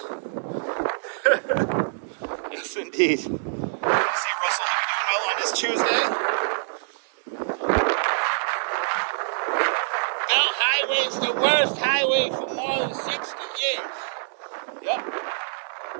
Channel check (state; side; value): silent; left; digital silence